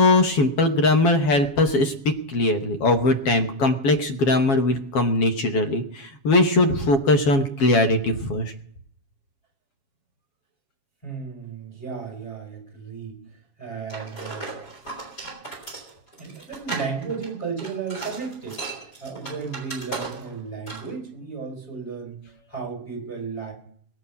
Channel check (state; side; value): late; right; 7.3 ms